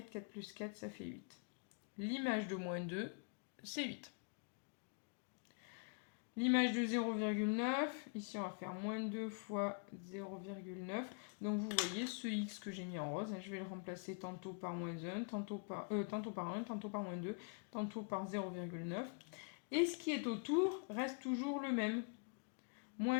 4 plus 4, ça fait 8. L'image de moins 2, c'est 8. L'image de 0,9, ici on va faire moins 2 fois 0,9. Donc vous voyez ce x que j'ai mis en rose, je vais le remplacer tantôt par moins 1, tantôt par 1, tantôt par moins 2, tantôt par 0,9. Et ce qui est autour reste toujours le même.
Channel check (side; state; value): right; quieter; 38.8 dB